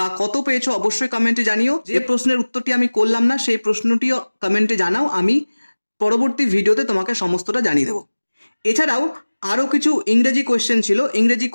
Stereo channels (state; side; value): inverted; both; correlation -1.00